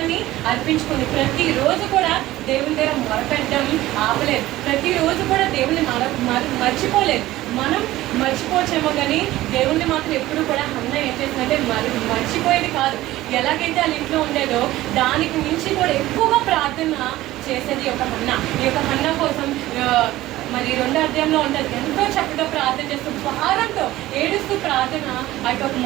అర్పించుకుంది. ప్రతిరోజు కూడా దేవుని దగ్గర మొరపెట్టడం ఆపలేదు. ప్రతిరోజు కూడా దేవుని మర్చిపోలేదు. మనం మర్చిపోవచ్చేమో, కానీ దేవుణ్ణి మాత్రం ఎప్పుడు కూడా హన్న ఏం చేసిందంటే మర్చిపోయేది కాదు. ఎలాగైతే వాళ్ళ ఇంట్లో ఉండేదో దానికి మించి కూడా ఎక్కువగా ప్రార్థన చేసేది ఈ యొక్క హన్న. ఈ యొక్క హన్న కోసం మరి 2వ అధ్యాయంలో ఉంటుంది. ఎంతో చక్కగా ప్రార్థన చేస్తూ భారంతో ఏడుస్తూ ప్రార్థన ఆ యొక్క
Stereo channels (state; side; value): quieter; left; 16.3 dB